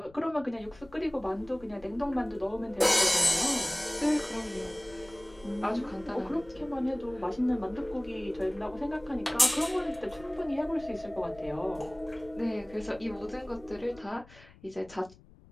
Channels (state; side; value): noise; left; rumble, 24 dB below the sound